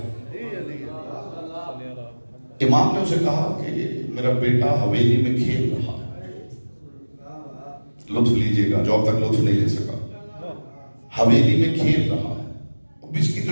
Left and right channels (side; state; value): both; inverted; correlation -1.00